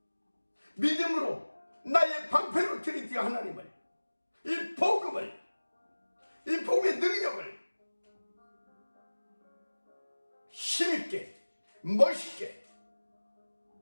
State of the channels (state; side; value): inverted; both; correlation -1.00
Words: 믿음으로 나의 방패로 트리니티 하나님을 이 복음의 능력을 힘있게 멋있게